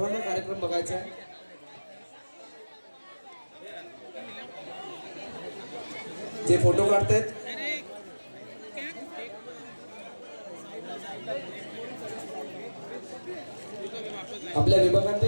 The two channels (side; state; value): both; inverted; correlation -1.00